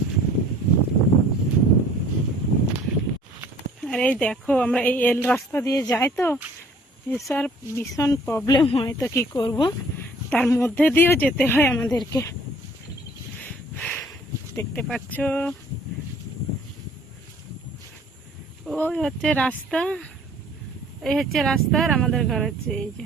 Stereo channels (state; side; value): normal; both; correlation 0.54